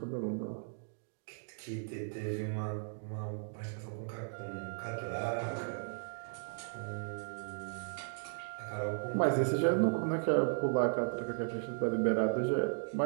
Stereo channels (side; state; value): left; silent; digital silence